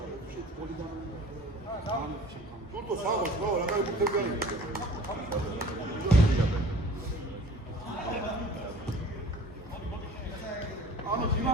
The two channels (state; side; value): normal; both; correlation 0.46